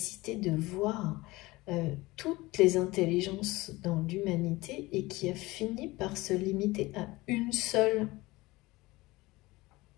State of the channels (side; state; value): right; quieter; 20.6 dB